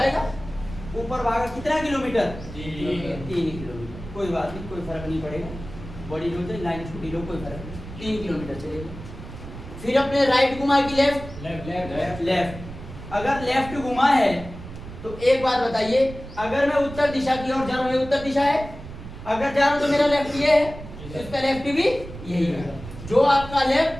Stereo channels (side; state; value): right; noise; rumble, 13 dB below the sound